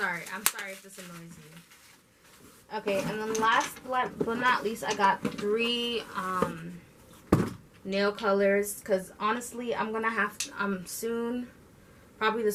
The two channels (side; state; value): both; identical; correlation 1.00